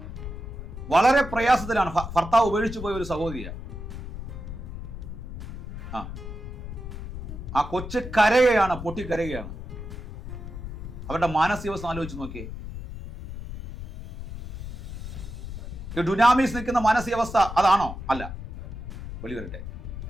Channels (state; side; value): noise; left; rumble, 9 dB below the sound